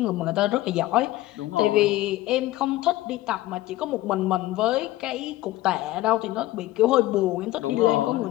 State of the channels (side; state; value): right; quieter; 16.3 dB